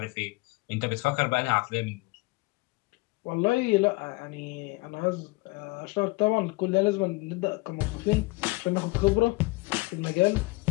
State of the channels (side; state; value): right; quieter; 24.1 dB